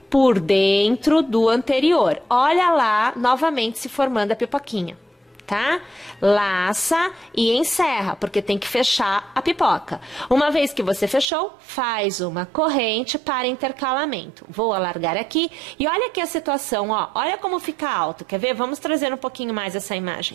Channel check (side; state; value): left; drops out; at 11.2 s